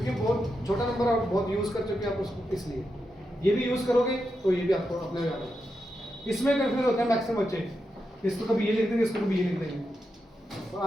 बहुत छोटा नंबर और बहुत यूज कर चुके हैं आप उसको, इसलिए ये भी यूज करोगे तो ये भी आपको अपने याद होगा। इसमें कंफ्यूज होते हैं मैक्सिमम बच्चे, इसको कभी ये लिख देंगे, इसको कभी ये लिख देंगे, और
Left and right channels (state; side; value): normal; both; correlation 0.86